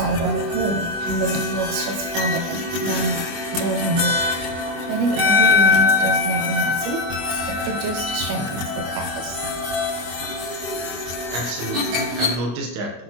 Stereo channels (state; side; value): late; left; 24 ms